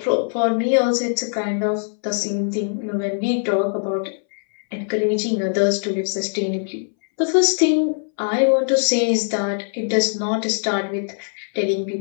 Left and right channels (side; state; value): right; silent; 63 dB below the other